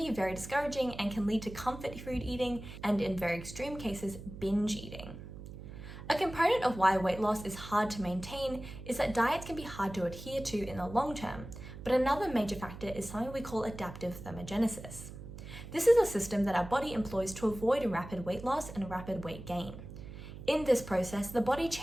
very discouraging and can lead to comfort food eating and, in very extreme cases, binge eating. A component of why weight loss is hard to maintain is that diets can be hard to adhere to in the long term, but another major factor is something we call adaptive thermogenesis. This is a system that our body employs to avoid rapid weight loss and rapid weight gain. In this process, the body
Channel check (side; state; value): right; noise; hum, 12 dB below the sound